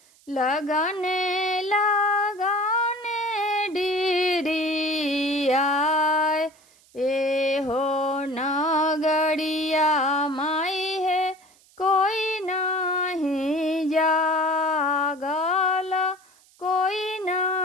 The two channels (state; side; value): noise; right; hiss, 29 dB below the sound